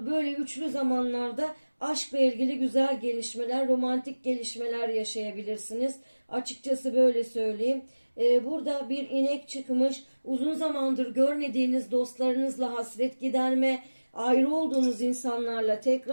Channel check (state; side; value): inverted; both; correlation -1.00